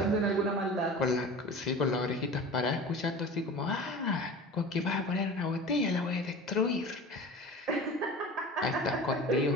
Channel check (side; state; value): both; normal; correlation 0.36